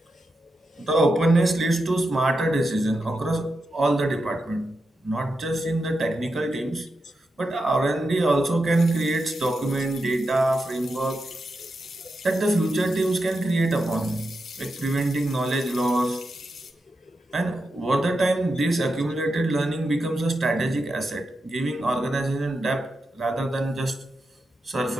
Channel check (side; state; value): both; normal; correlation 0.87